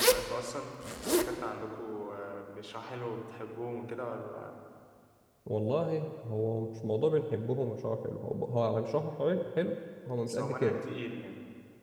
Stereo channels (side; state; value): both; identical; correlation 1.00